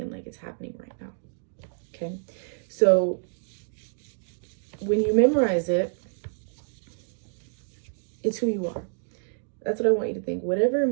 like it's happening right now. Okay, so when you memorize it, it's who you are. That's what I want you to think. Whatever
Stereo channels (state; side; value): silent; left; digital silence